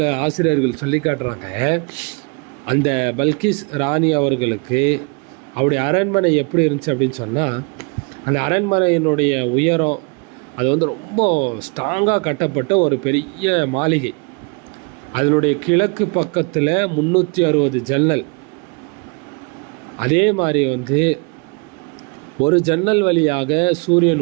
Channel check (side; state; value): left; quieter; 33.9 dB